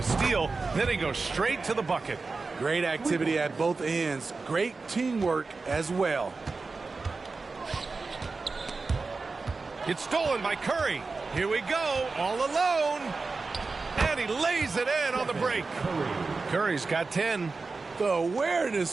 steal, then he goes straight to the bucket. Great activity at both ends. Great teamwork as well. It's stolen by Curry. Here we go, all alone. And he lays it in on the break. Curry's got 10. The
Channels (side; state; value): left; quieter; 4.0 dB